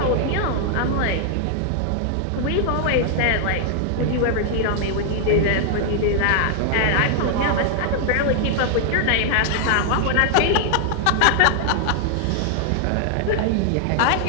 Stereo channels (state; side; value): different; both; correlation 0.00